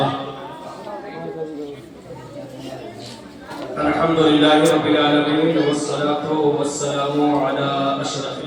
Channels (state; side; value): identical; both; correlation 1.00